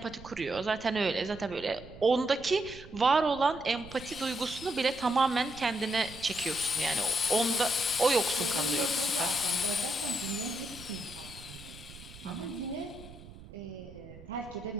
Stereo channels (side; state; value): right; noise; rumble, 17 dB below the sound